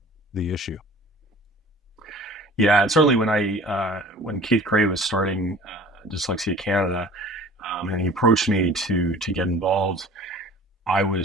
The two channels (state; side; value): normal; both; correlation 0.45